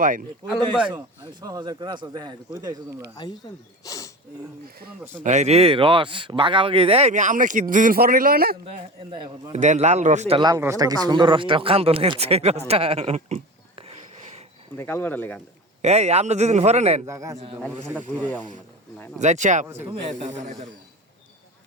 ভাই আলম ভাই আমি 6000 করে আসো দেখা কই দাইছো তোমরা আইছেন এই রে রস বাগাবাগি এই আমরা কি দুদিন পর নিল না এন্দা এখন দেন লাল রসটা কি সুন্দর রসটা কান্দো লাগছে রসটা কাল বাড়া লেগান এই আমরা দুদিন পরে নেন জায়গা আছে তো ঠান্ডা ঘুরে যাও না যাচ্ছি তুমি এটা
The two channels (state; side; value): normal; both; correlation 0.31